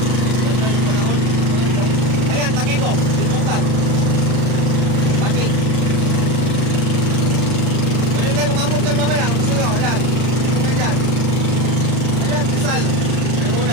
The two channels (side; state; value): left; late; 31 ms